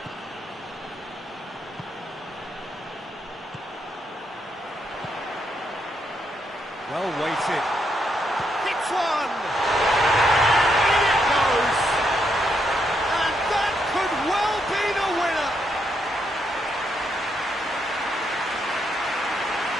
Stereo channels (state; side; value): normal; both; correlation 0.78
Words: Well weighted. Hits one! In it goes! And that could well be the winner!